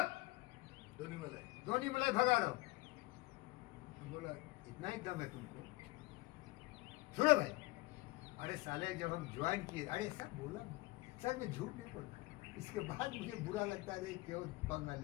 धोनी मलाई भगा रहा हूँ। तो बोला इतना ही दम है तुमको, सुनो भाई। अरे साले जब हम ज्वाइन किए, अरे सर बोला ना सर, मैं झूठ नहीं बोलता, इसके बाद मुझे बुरा लगता है क्यों पंगा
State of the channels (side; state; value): right; quieter; 22.0 dB